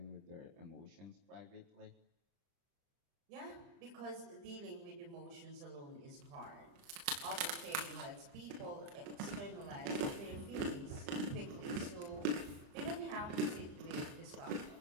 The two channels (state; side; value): late; left; 30 ms